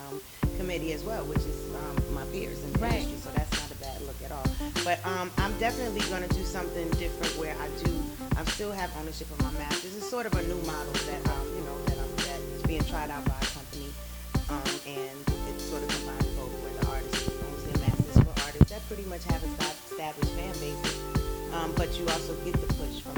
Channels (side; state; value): both; identical; correlation 1.00